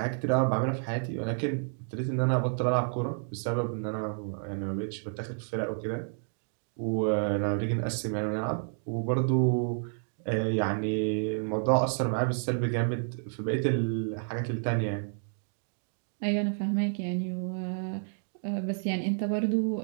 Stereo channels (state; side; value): silent; left; digital silence